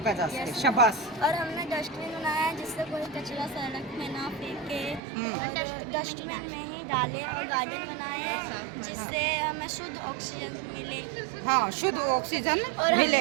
जा सके। शाबाश। और हमने डस्टबिन बनाया है जिससे कोई कचरा सड़क में ना फेंके, डस्टबिन में ही डाले। और गार्डन बनाए हैं जिससे हमें शुद्ध ऑक्सीजन मिले। हाँ, शुद्ध ऑक्सीजन और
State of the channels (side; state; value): left; drops out; at 5.0 s